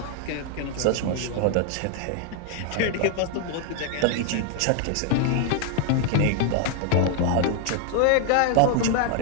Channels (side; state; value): both; different; correlation 0.00